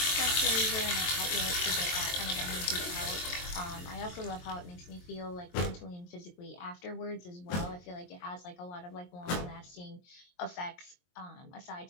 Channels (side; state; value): right; late; 23 ms